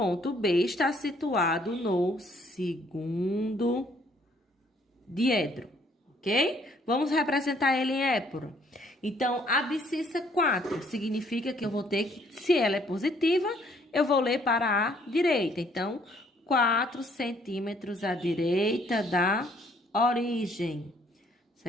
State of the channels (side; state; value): both; normal; correlation 0.64